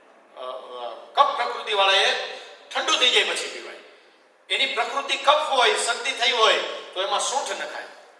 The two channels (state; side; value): identical; both; correlation 1.00